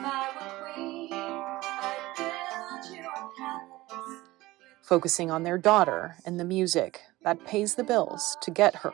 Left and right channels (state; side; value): quieter; left; 18.7 dB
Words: I were queen, I'd build you a palace. Focusing on their daughter and the music that pays the bills to get her